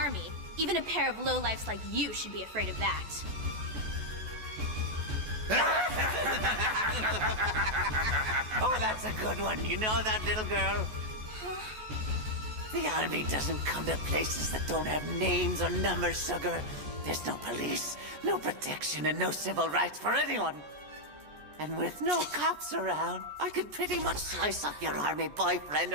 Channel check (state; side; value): late; left; 14 ms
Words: Even a pair of lowlifes like you should be afraid of that. Oh, that's a good one. You know that, little girl? The army doesn't come to places that don't have names or numbers, sugar. There's no police, no protection, and no civil rights for anyone. And with no cops around, I could pretty much slice up your army boyfriend